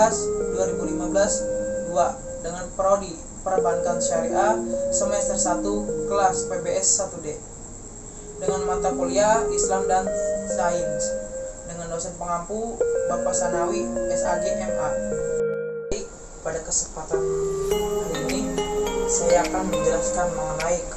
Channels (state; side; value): identical; both; correlation 1.00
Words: 2 dengan prodi Perbankan Syariah semester 1 kelas PBS 1D dengan mata kuliah Islam dan Sains dengan dosen pengampu Bapak Sanawi SAG MA. Pada kesempatan hari ini saya akan menjelaskan mengenai